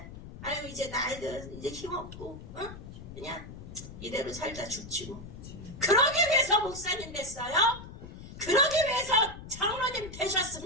아유 이제 나이들 이제 힘없고 그냥 이대로 살다 죽지 뭐. 그러기 위해서 목사님 됐어요? 그러기 위해서 장로님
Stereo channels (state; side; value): noise; left; rumble, 13 dB below the sound